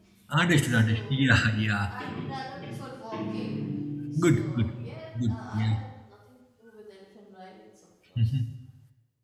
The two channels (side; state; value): both; identical; correlation 1.00